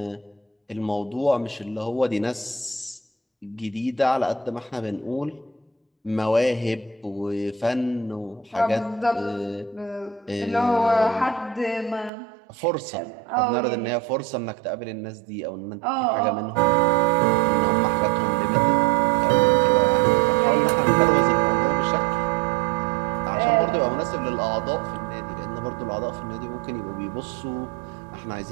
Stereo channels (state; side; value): drops out; left; at 12.1 s